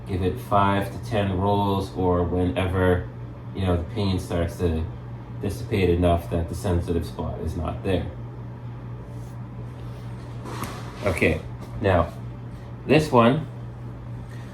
Give it 5 to 10 rolls, or whenever the pain starts to dissipate enough that the sensitive spot is not there. Okay, now this one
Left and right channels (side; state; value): both; identical; correlation 1.00